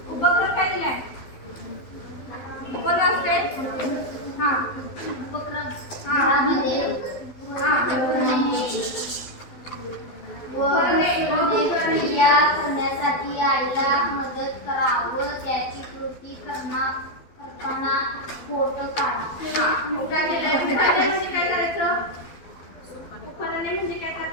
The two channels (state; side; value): late; right; 12 ms